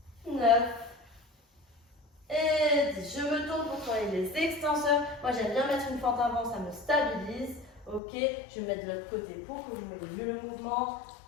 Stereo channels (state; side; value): drops out; right; at 8.0 s